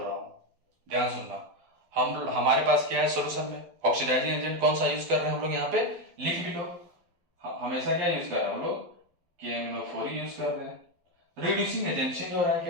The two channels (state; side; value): late; left; 12 ms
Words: हूं, ध्यान सुनना। हमारे पास क्या है सोल्यूशन में, ऑक्सीडाइजिंग एजेंट कौन सा यूज कर रहे हैं हम लोग, यहाँ पे लिख भी लो। हमेशा क्या यूज कर रहे हैं हम लोग, KMnO4 यूज कर रहे हैं। रिड्यूसिंग एजेंट चेंज हो रहा है